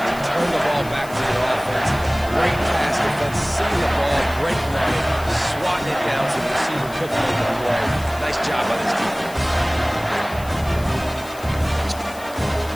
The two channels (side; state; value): left; noise; hiss, 18 dB below the sound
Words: turn the ball back to your offense. Great pass defense, seeing the ball, breaking on it, swatting it down to the receiver, cooking on the play. Nice job by this defense.